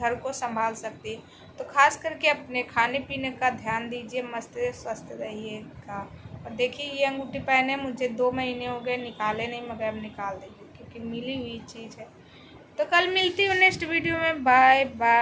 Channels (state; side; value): identical; both; correlation 1.00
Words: घर को संभाल सकती है। तो खास करके अपने खाने पीने का ध्यान दीजिए, मस्त स्वस्थ रहिएगा। और देखिए ये अंगूठी पहने मुझे 2 महीने हो गए, निकाले नहीं, मगर अब निकाल देंगे क्योंकि मिली हुई चीज़ है। तो कल मिलती हूँ नेक्स्ट वीडियो में। Bye